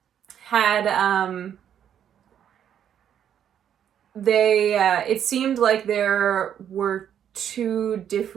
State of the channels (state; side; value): quieter; left; 9.3 dB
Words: had, it seemed like there were two